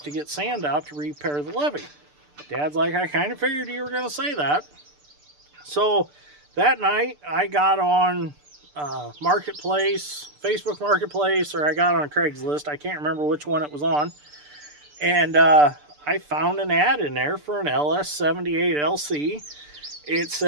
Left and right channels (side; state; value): left; late; 6.8 ms